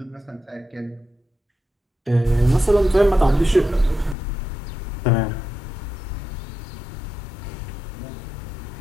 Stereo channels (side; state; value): right; drops out; at 4.2 s